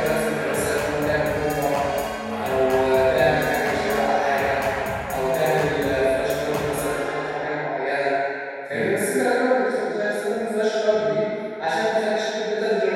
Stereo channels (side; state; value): both; identical; correlation 1.00